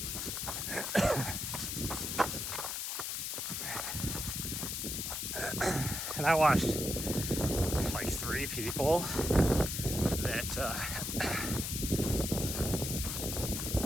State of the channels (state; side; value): noise; left; hiss, 3 dB below the sound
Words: And I watched like 3 people that